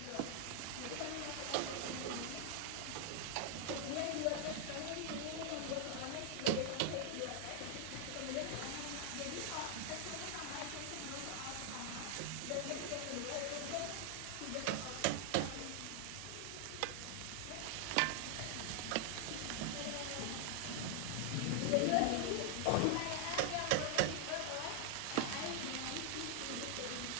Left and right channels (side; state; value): both; different; correlation 0.00